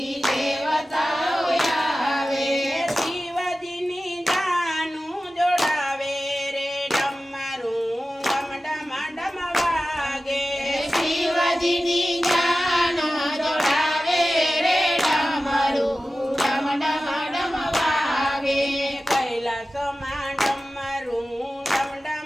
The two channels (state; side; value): normal; both; correlation 0.95